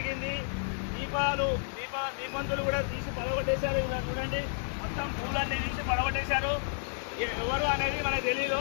దీపంతులు కూడా తీసి పడగొట్టేశారు. చూడండి మొత్తం పూలన్నీ తీసి పడగొట్టేశారు. ఎవరు అనేది మనకు తెలీదు.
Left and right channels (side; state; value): right; silent; digital silence